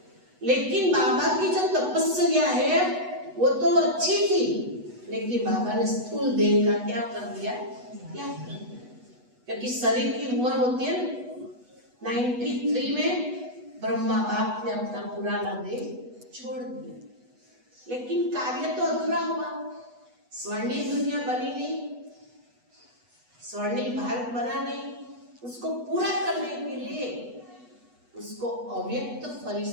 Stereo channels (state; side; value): late; left; 8.1 ms